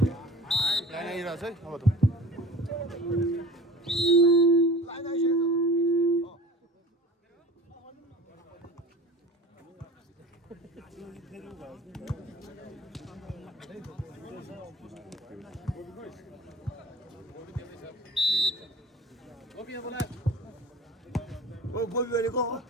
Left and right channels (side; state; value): both; normal; correlation 0.41